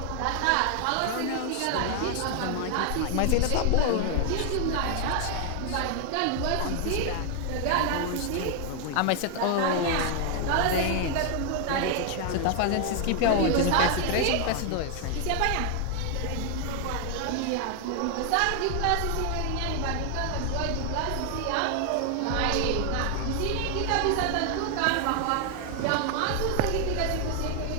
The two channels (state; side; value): different; both; correlation 0.00